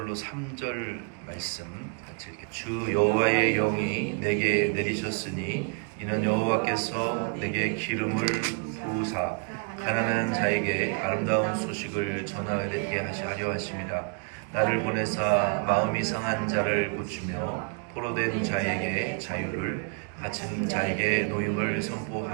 3절 말씀 같이 읽게. 주 여호와의 영이 내게 내리셨으니 이는 여호와께서 내게 기름을 부으사 가난한 자에게 아름다운 소식을 전하게 하려 하심이라. 나를 보내사 마음이 상한 자를 고치며 포로된 자에게 자유를, 갇힌 자에게 노임을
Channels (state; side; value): quieter; left; 34.9 dB